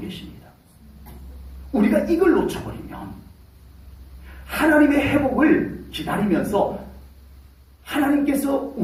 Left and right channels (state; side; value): identical; both; correlation 1.00